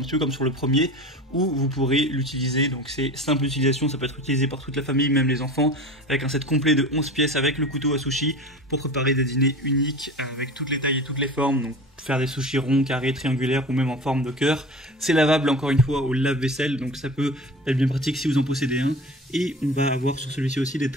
peu comme sur le premier, où vous pourrez l'utiliser. Donc c'est simple utilisation, ça peut être utilisé par toute la famille, même les enfants, avec un set complet de 11 pièces avec le couteau à sushi pour préparer des dîners uniques avec toutes les tailles et toutes les formes. Donc faire des sushis ronds, carrés, triangulaires ou même en forme de cœur. C'est lavable encore une fois au lave-vaisselle, donc ça peut être bien pratique si vous en possédez un. Et on va avoir sur celui-ci aussi des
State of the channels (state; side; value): normal; both; correlation 0.35